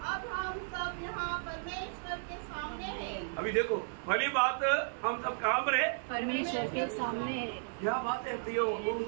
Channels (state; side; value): silent; left; digital silence